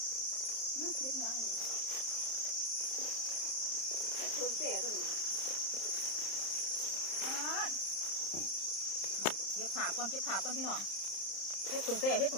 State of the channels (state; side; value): late; right; 31 ms